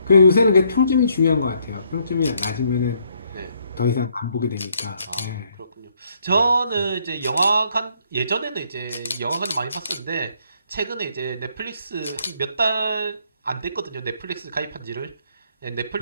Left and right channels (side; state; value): both; inverted; correlation -0.70